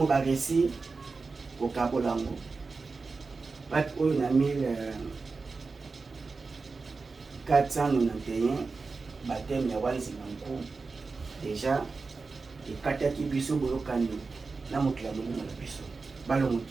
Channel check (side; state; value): left; quieter; 4.2 dB